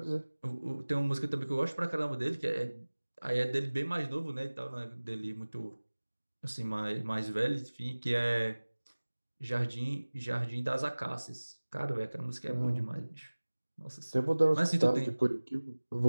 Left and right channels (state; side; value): inverted; both; correlation -1.00